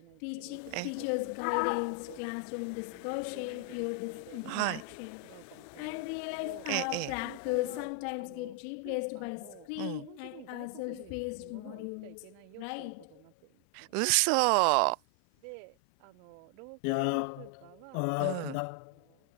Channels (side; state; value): both; different; correlation 0.00